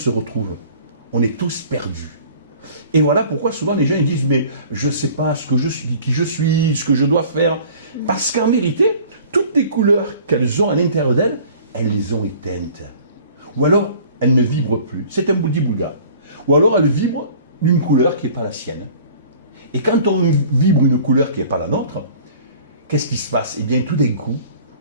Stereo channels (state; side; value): inverted; both; correlation -0.48